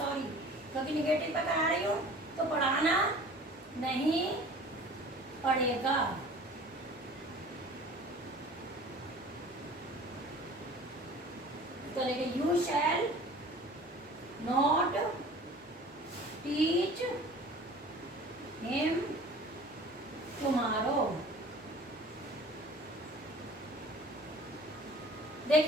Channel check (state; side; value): normal; both; correlation 0.45